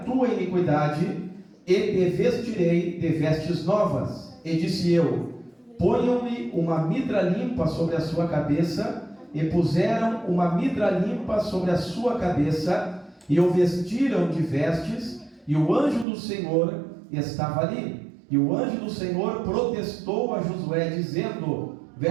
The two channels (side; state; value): left; drops out; at 16.1 s